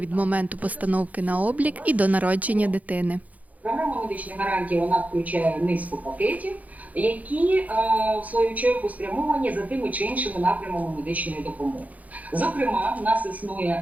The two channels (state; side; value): late; left; 0.075 ms